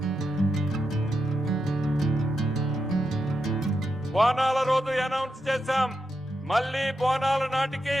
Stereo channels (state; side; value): normal; both; correlation 0.86